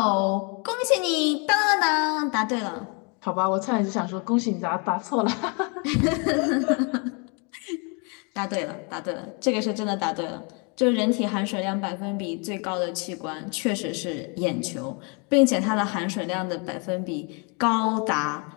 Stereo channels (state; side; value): quieter; right; 34.4 dB